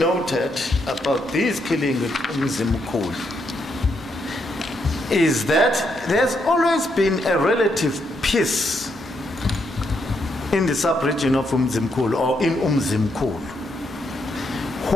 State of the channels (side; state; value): both; normal; correlation 0.78